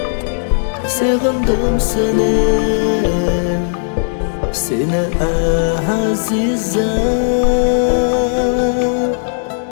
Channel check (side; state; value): right; silent; digital silence